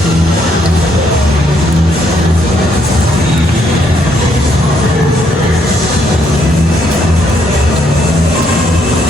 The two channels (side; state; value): both; normal; correlation 0.72